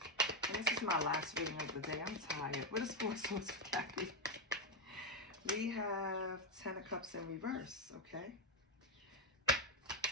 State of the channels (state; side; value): normal; both; correlation 0.06